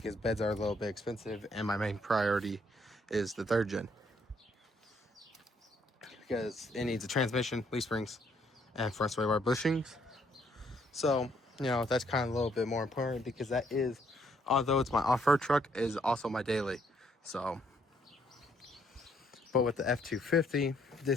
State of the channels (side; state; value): both; normal; correlation 0.69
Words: beds are a little bit expensive, and my main priority is the 3rd gen because it needs a transmission, leaf springs, and front sway bar bushings. So, you know, that's kind of a little bit more important, because that is, although it's my off-road truck, is also my daily. So, but with the F250,